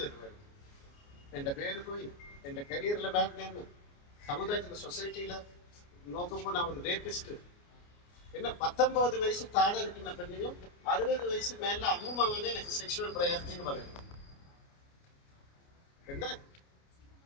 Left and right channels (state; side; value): late; right; 29 ms